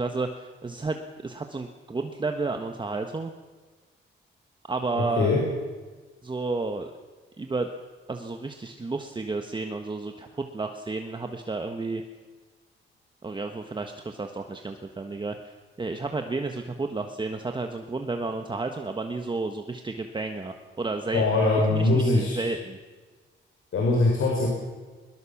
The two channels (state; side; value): normal; both; correlation 0.58